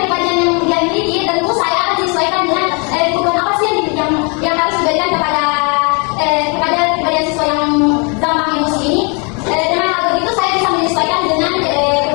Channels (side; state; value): right; quieter; 33.8 dB